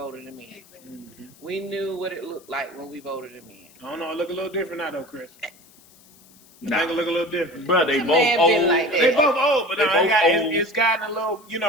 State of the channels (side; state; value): left; noise; hiss, 26 dB below the sound